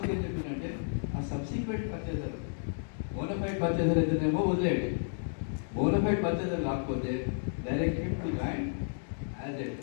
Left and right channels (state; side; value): silent; right; digital silence